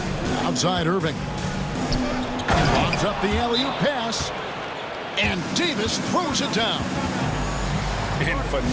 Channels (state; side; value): identical; both; correlation 1.00